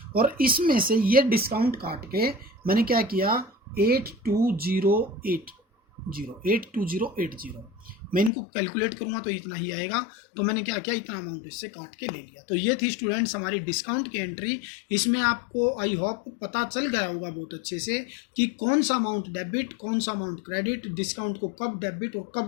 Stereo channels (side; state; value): right; drops out; at 8.3 s